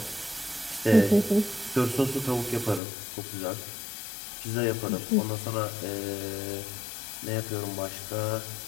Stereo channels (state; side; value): drops out; right; at 2.8 s